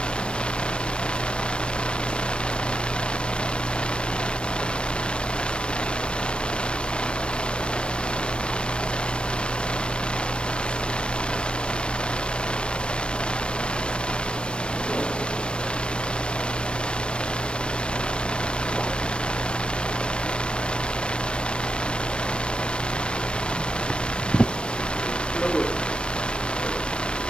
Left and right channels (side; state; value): right; late; 0.056 ms